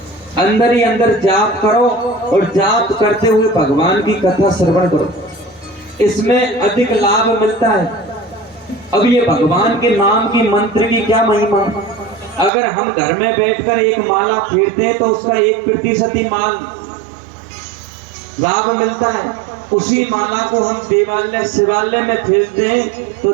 अंदर ही अंदर जाप करो और जाप करते हुए भगवान की कथा श्रवण करो। इसमें अधिक लाभ मिलता है। अब ये भगवान के नाम की मंत्र की क्या महिमा। अगर हम घर में बैठकर एक माला फेरते हैं तो उसका 1% ही माल लाभ मिलता है। उसी माला को हम देवालय शिवालय में फेरते हैं तो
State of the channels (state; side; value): drops out; left; at 12.5 s